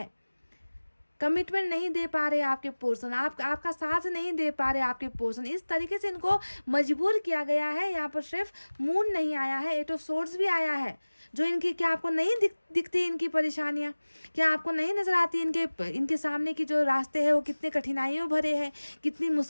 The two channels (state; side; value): inverted; both; correlation -1.00